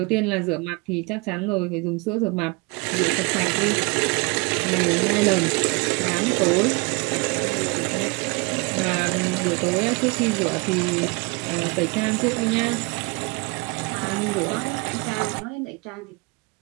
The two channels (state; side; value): quieter; left; 27.7 dB